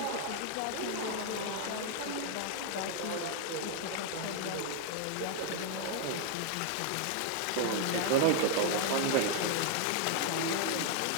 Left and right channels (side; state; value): both; different; correlation 0.00